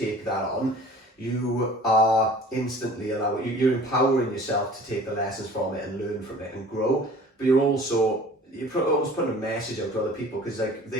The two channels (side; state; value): both; normal; correlation 0.46